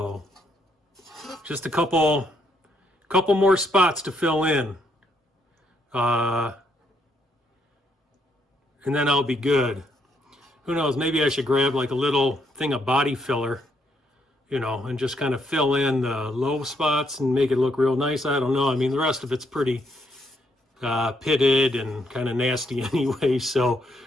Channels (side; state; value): both; normal; correlation 0.74